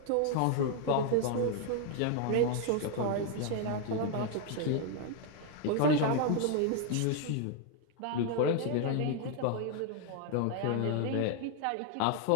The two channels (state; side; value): different; both; correlation 0.00